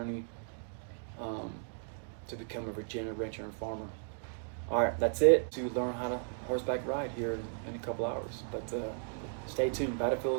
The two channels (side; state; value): left; silent; digital silence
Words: to become a Virginia rancher and farmer. All right, that's it to learn how to horseback ride here in a couple hours. But stay tuned,